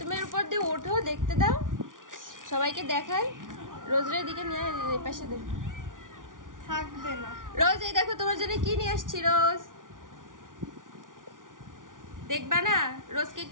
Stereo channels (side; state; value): left; late; 0.88 ms